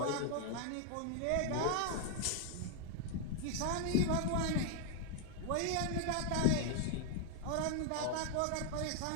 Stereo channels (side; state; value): both; different; correlation 0.00